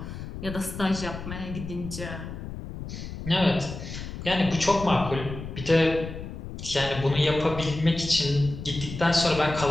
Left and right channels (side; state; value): left; noise; rumble, 9 dB below the sound